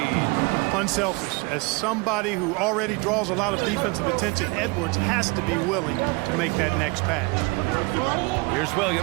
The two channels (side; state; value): left; quieter; 27.4 dB